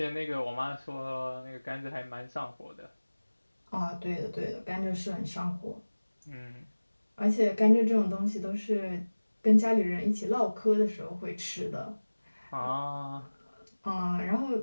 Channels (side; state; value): both; inverted; correlation -1.00